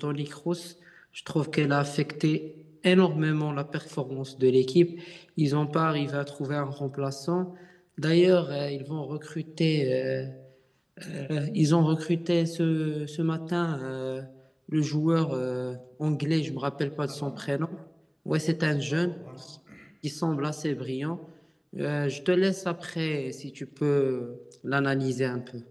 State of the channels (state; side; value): identical; both; correlation 1.00